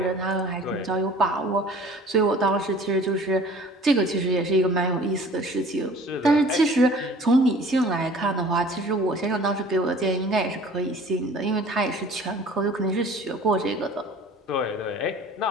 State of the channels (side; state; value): both; normal; correlation 0.48